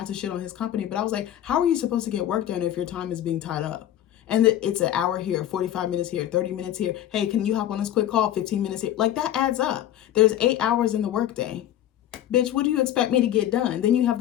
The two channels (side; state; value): right; quieter; 11.9 dB